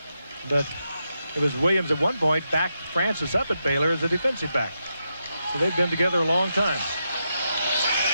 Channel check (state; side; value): inverted; both; correlation -0.85